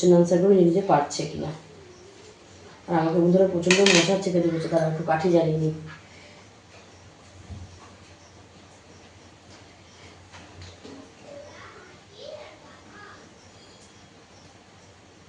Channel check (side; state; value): both; identical; correlation 1.00